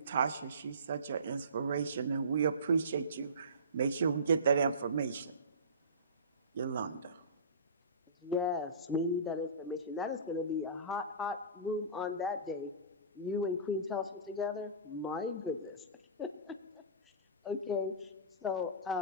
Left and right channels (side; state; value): both; inverted; correlation -0.33